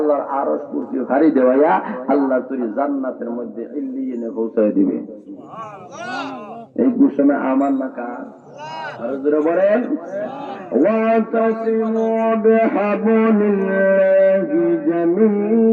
আরশ কুরসি ভারী দেওয়াইয়া আল্লাহ তুই জান্নাতের মধ্যে ইল্লিয়িনে পৌঁছায় দিবে এই ঘোষণা আমার না কার আর জোরে বলেন ওয়াতাসিমু বিহাবলিল্লাহি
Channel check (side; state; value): both; identical; correlation 1.00